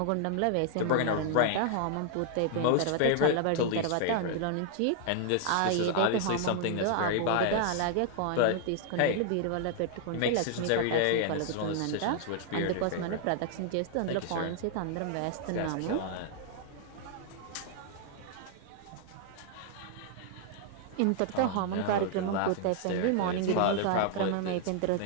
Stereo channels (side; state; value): both; different; correlation 0.00